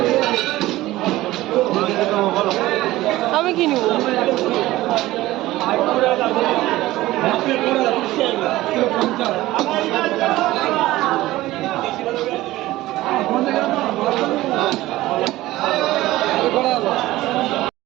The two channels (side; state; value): left; quieter; 17.0 dB